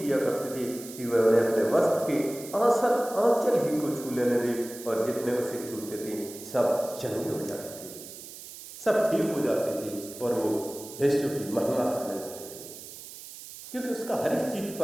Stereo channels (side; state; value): right; noise; hiss, 14 dB below the sound